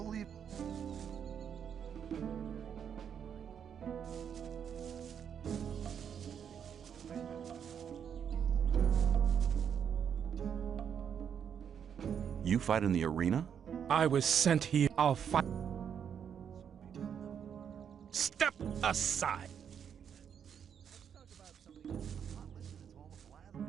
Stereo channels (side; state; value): left; quieter; 8.0 dB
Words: You fight in the arena? I was sent here. I'll fight. Step aside.